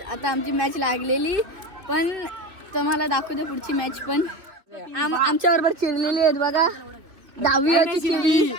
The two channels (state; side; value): late; left; 2.8 ms